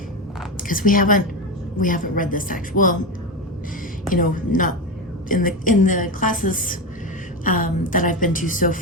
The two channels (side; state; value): both; normal; correlation 0.17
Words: because we haven't read this actually. Well, you know, not in the classes that I've been to so